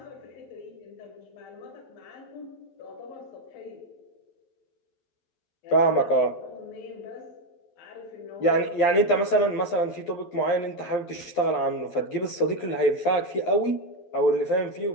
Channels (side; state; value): right; late; 11 ms